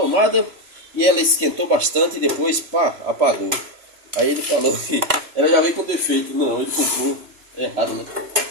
e ela esquentou bastante e depois, pá, apagou. Aí ele falou que ela já veio com defeito. Não, ele comprou errado, né?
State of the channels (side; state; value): left; late; 3.0 ms